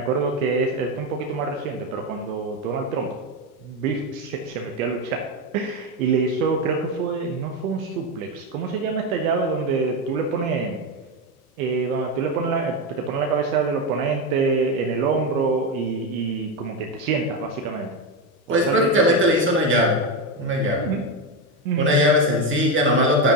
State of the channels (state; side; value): normal; both; correlation 0.12